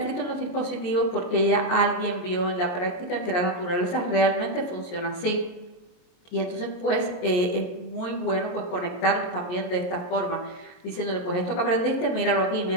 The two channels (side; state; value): right; late; 23 ms